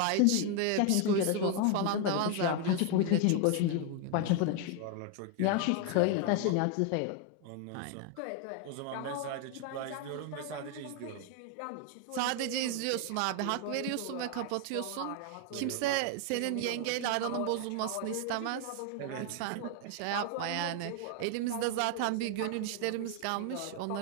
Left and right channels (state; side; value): different; both; correlation 0.01